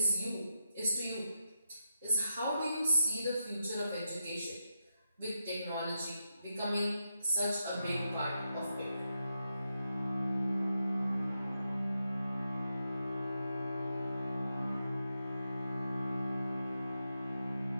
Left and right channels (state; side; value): inverted; both; correlation -0.85